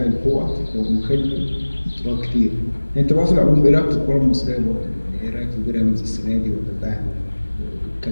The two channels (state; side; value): inverted; both; correlation -1.00